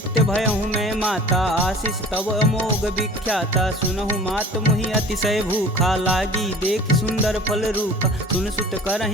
भयहु मैं माता आशीष तब अमोघ विख्याता सुनहु मात मुहि अतिशय भूखा लागी देख सुंदर फल रूप सुन सुत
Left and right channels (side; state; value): both; normal; correlation 0.44